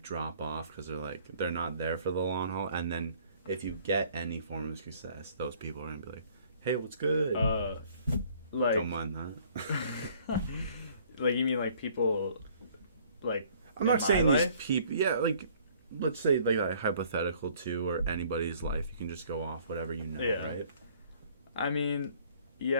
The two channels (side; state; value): both; inverted; correlation -0.58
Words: drop off because they're not there for the long haul, and then if you get any form of success, those people are gonna be like, hey, what's good? Like, don't mind that. Like, you mean like people like I'm not saying these people, yeah, like let's say like hypothetical too, or anybody's life, you can just go off whatever you know, right? I mean,